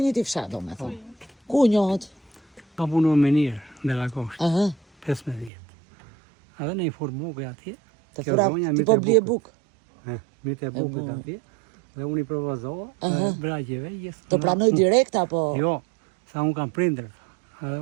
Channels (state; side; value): drops out; left; at 5.5 s